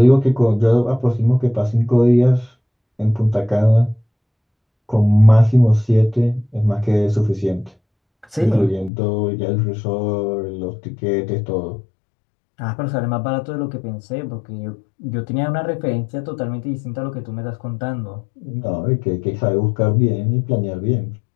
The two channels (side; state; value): right; drops out; at 8.9 s